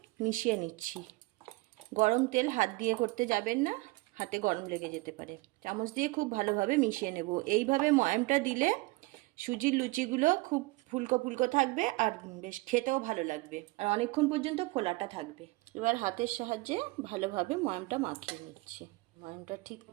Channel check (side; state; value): left; quieter; 23.2 dB